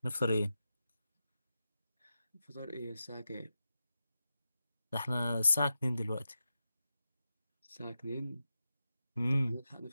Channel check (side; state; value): both; inverted; correlation -0.90